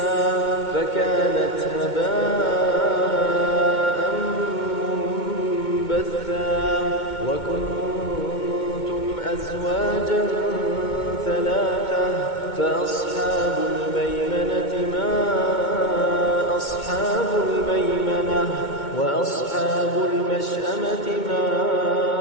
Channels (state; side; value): late; right; 2.2 ms